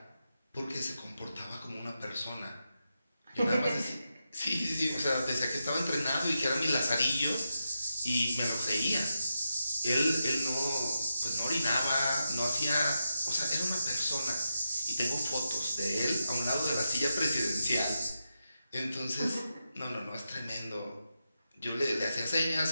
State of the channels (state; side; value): inverted; both; correlation -0.88